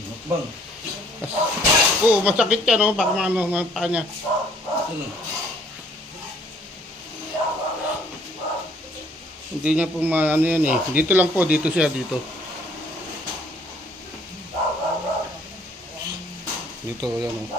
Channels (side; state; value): both; normal; correlation 0.60